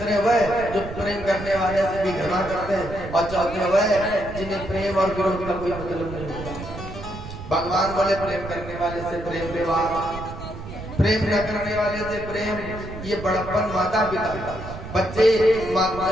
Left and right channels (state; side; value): noise; right; rumble, 11 dB below the sound